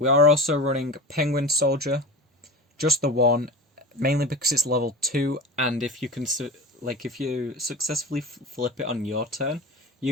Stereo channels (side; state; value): both; normal; correlation 0.30